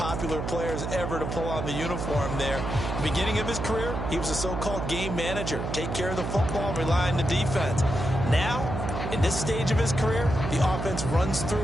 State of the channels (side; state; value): right; noise; hum, 4 dB below the sound